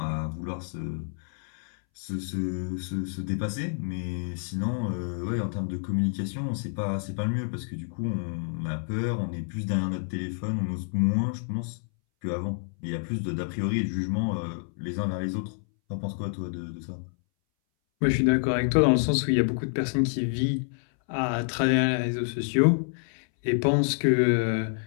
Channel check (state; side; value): silent; right; 59 dB below the other